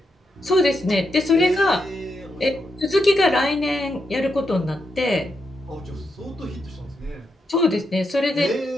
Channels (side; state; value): both; normal; correlation 0.83